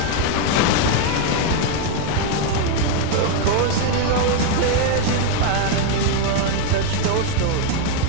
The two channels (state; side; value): different; both; correlation 0.01